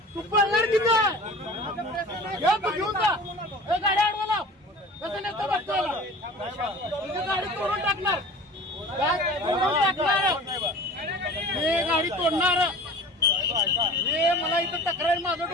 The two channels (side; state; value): both; normal; correlation 0.40